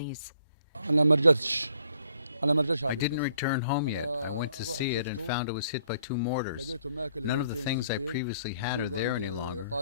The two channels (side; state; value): both; inverted; correlation -0.65